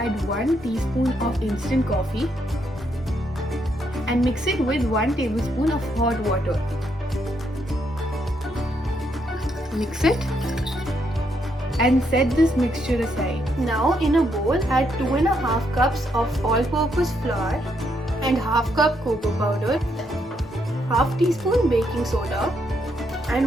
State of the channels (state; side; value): normal; both; correlation 0.76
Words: 1 teaspoon of instant coffee and mix it with 1 tablespoon of hot water. Mix it and set this mixture aside. Now in a bowl, add 2.5 cups of all-purpose flour and half cup cocoa powder, half teaspoon baking soda